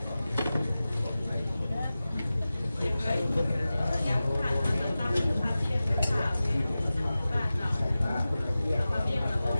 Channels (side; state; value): both; inverted; correlation -0.96